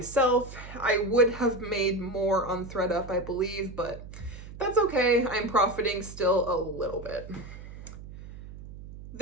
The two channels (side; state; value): right; noise; hum, 14 dB below the sound